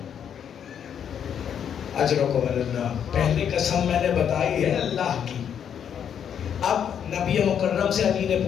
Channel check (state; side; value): quieter; right; 8.5 dB